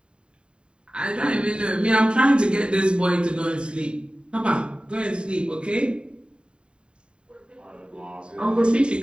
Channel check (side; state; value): left; late; 0.052 ms